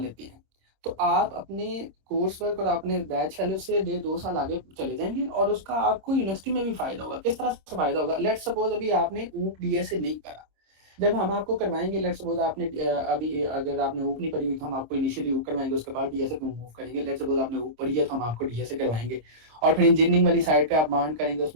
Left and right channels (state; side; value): late; left; 26 ms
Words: हैं, तो आप अपने कोर्स वर्क और अपने बैच फेलो से 1.5-2 साल आगे चले जाएंगे, और उसका आपको यूनिवर्सिटी में भी फायदा होगा। किस तरह से फायदा होगा? लेट सपोज अभी आपने ऊप डीएसए नहीं करा, जब हम आपको करवाएंगे, लेट सपोज आपने अभी अगर आपने ऊप नहीं पढ़ी हुई तो हम आपको इनिशियली ऊप करवाएंगे, उसके बाद डीएसए पे मूव करेंगे। लेट सपोज आपने ऊप पढ़ी है तो हम आपको डीएसए करवाएंगे, और फिर इंजीनियरिंग वाली साइड पे आप मांड करेंगे,